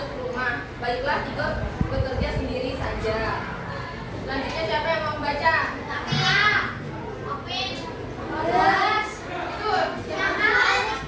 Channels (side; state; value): both; identical; correlation 1.00